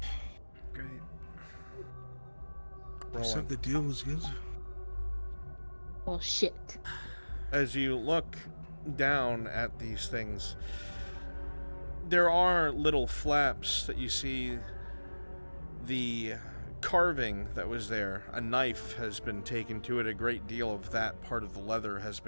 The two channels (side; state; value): both; inverted; correlation -1.00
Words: Great. I said the deal was good. Oh shit. As you look down at these things, there are little flaps that you see. The carving that was there, a knife has been taken to it. A great deal of that part of the leather has